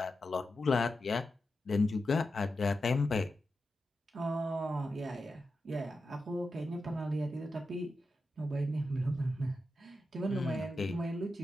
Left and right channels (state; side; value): normal; both; correlation 0.89